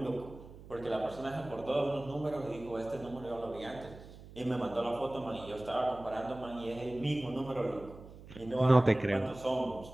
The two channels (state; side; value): noise; right; hum, 17 dB below the sound